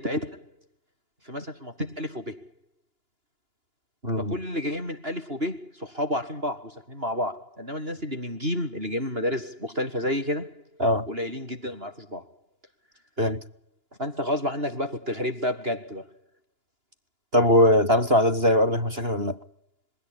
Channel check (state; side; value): late; left; 2.9 ms